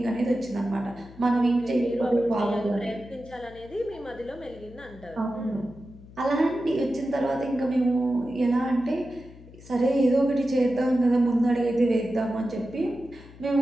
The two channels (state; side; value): noise; left; hum, 20 dB below the sound